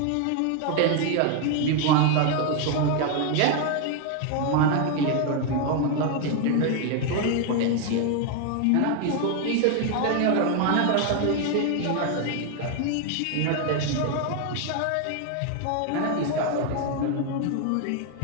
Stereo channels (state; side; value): different; both; correlation 0.01